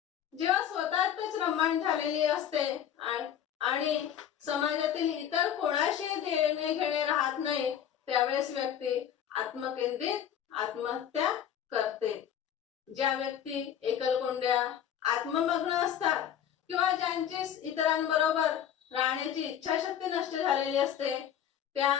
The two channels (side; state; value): right; quieter; 9.6 dB